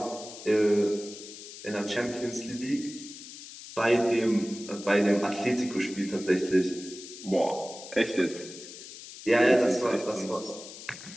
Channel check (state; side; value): noise; left; hiss, 14 dB below the sound